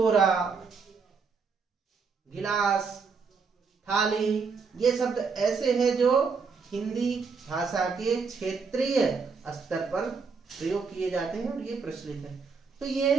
गिलास, थाली, ये शब्द ऐसे हैं जो हिंदी भाषा के क्षेत्रीय स्तर पर प्रयोग किए जाते हैं और ये प्रचलित है। तो ये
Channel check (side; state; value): left; quieter; 5.1 dB